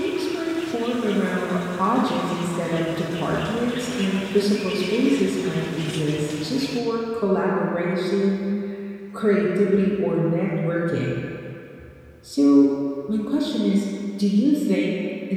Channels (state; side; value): identical; both; correlation 1.00